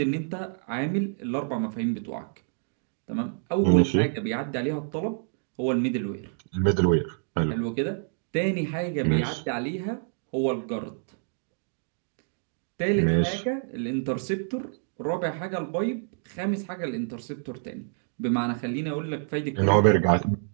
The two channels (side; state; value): left; silent; digital silence